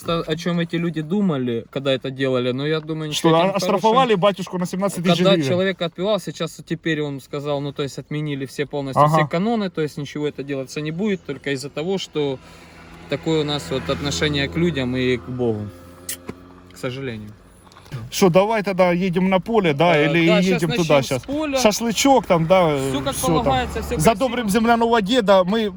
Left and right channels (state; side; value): identical; both; correlation 1.00